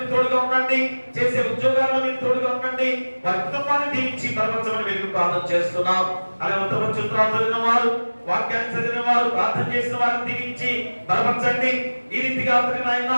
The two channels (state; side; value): inverted; both; correlation -1.00